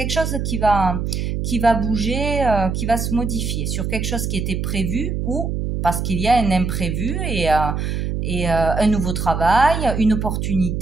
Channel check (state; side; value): noise; right; hum, 2 dB below the sound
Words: chose qui va bouger, qui va se modifier sur quelque chose qui était prévu, ou parce qu'il y a un imprévu et un nouveau travail, une